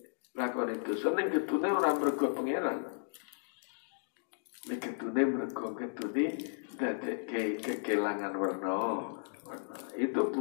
lakoni dosa, ning ketune ora mergo pangeran, ning ketune mergo ketune dadekke kekelangan warna. Itu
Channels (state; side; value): silent; right; digital silence